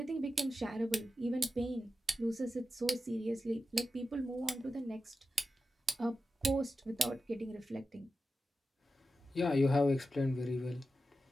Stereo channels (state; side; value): normal; both; correlation 0.91